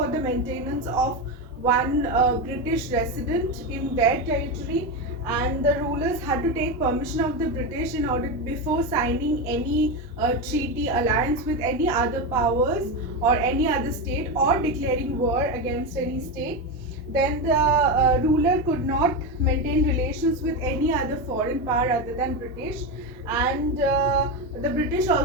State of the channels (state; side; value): normal; both; correlation 0.14